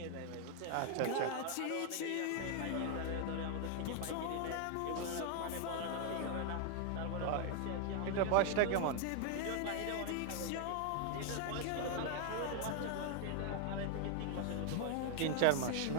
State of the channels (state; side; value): different; both; correlation 0.00